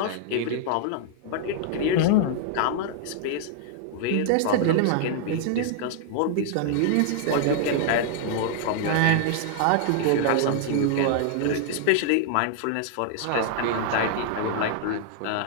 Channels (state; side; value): different; both; correlation -0.01